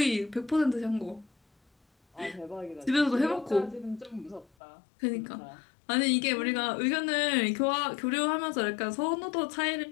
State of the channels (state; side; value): drops out; right; at 4.5 s